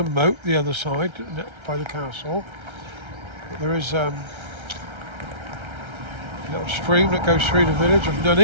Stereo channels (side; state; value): left; late; 1.3 ms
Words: moat the other side by the castle. But there is a little stream that goes through the village of